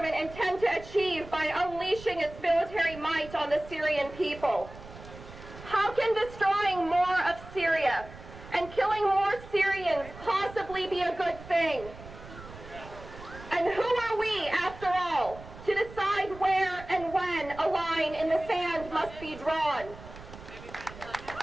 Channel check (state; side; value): noise; right; rumble, 16 dB below the sound